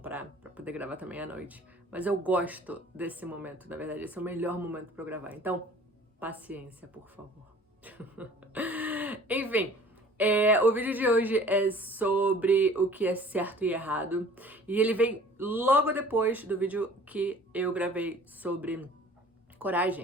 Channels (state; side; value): normal; both; correlation 0.49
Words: pra poder gravar também à noite. Mas eu gosto desse momento, na verdade, esse é o melhor momento pra eu gravar. Então, paciência, por favor. Enfim, o vídeo de hoje é sobre o que é certo e errado. E ele vem logo depois do vídeo que eu gravei sobre